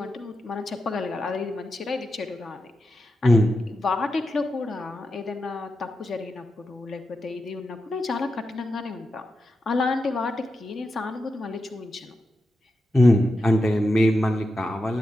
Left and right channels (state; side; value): normal; both; correlation 0.89